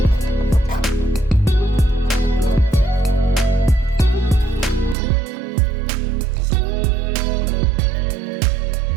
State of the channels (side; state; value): left; drops out; at 5.0 s